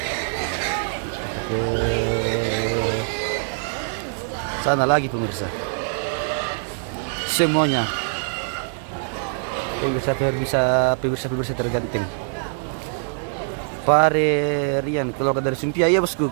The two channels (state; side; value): silent; left; 63 dB below the other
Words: Ke sana lagi pemirsa. Semuanya pemirsa tergantung. Pare Rian keluar dari Sumpia ya bosku,